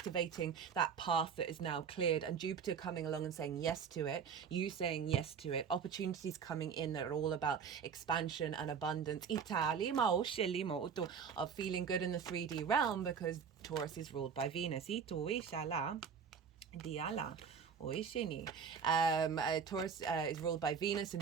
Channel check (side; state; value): left; quieter; 6.6 dB